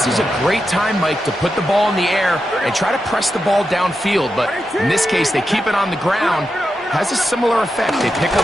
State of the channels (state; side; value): normal; both; correlation 0.88